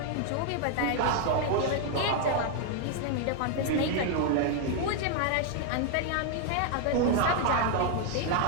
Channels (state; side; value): different; both; correlation 0.00